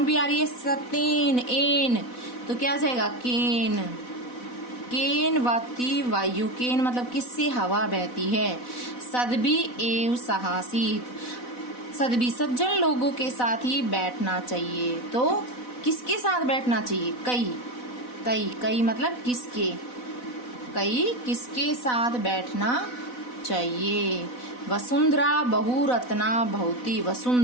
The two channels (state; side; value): late; right; 4.0 ms